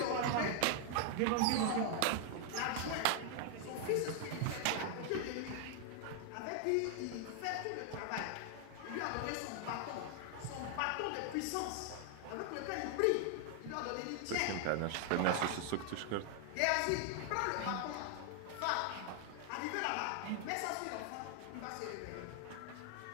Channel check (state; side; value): different; both; correlation 0.00